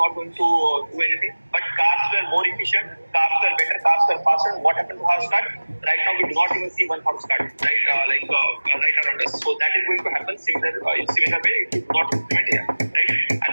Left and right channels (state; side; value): inverted; both; correlation -1.00